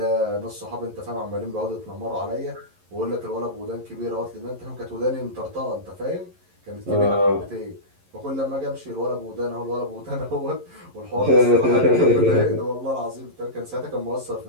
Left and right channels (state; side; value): late; left; 11 ms